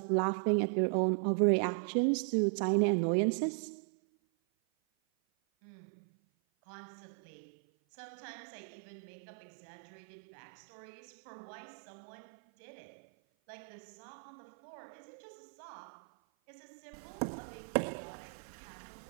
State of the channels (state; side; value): silent; left; 53 dB below the other